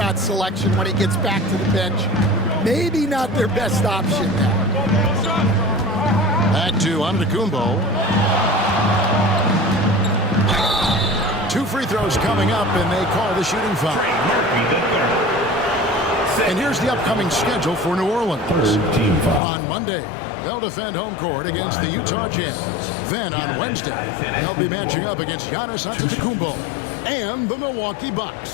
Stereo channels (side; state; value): right; drops out; at 19.4 s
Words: selection when he gets back to the bench. Maybe not their best option now. Back to Antetokounmpo. 2 free throws coming up, and they call the shooting foul. And here's the upcoming schedule for New Orleans. On Monday, they'll defend home court against the Utah Jazz. Then on Wednesday, they'll be matching up against Giannis Antetokounmpo and the Milwaukee